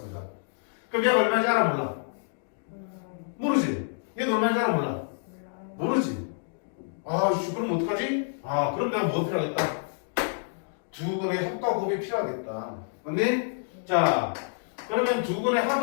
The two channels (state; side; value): silent; right; digital silence